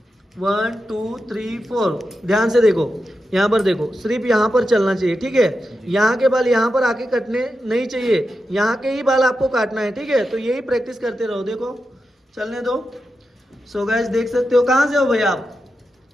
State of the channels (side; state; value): both; normal; correlation 0.89